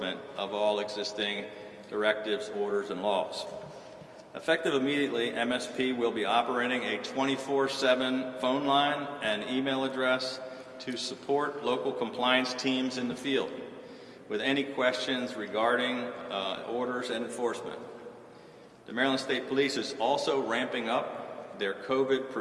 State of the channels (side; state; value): both; identical; correlation 1.00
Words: of all existing directives, orders, and laws. Effective immediately, MSP will be operating a 24/7 phone line and email address to support local compliance teams in the field with any questions regarding orders and enforcement. The Maryland State Police is also ramping up their COVID